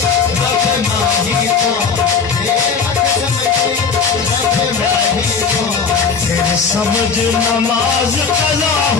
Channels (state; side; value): quieter; right; 5.6 dB